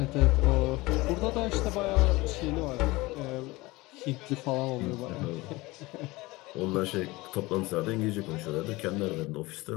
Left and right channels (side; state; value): right; quieter; 21.4 dB